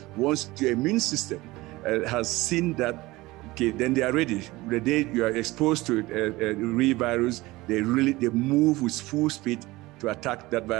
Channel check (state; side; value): quieter; left; 20.1 dB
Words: once your immune system has seen that, okay, then they are ready. The day you are exposed to a real virus, they move with full speed to attack that